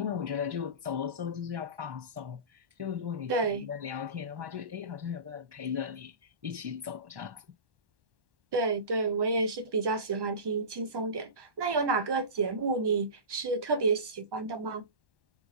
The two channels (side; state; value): left; late; 1.1 ms